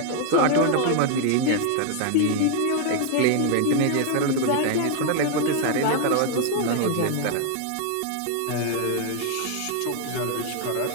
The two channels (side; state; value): both; different; correlation 0.00